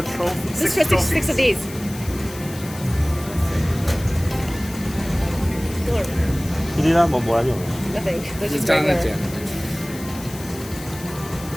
trophy. this 6 for six of these. 呢啲啦，冇撚用。 Nothing. They're just 爭一 regular. 隻。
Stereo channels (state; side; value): noise; left; hiss, 15 dB below the sound